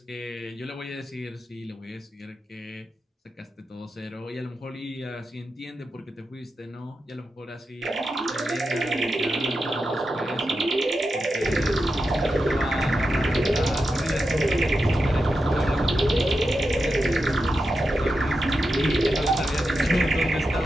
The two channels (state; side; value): normal; both; correlation 0.89